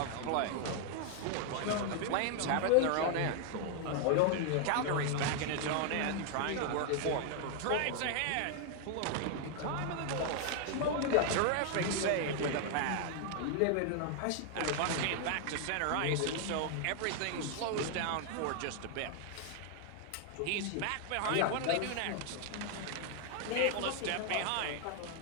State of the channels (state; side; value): different; both; correlation 0.00